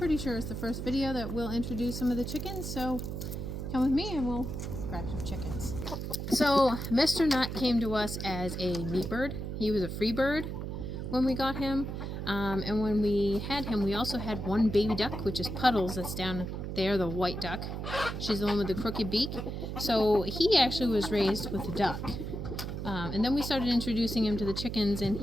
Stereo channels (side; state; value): right; noise; hum, 5 dB below the sound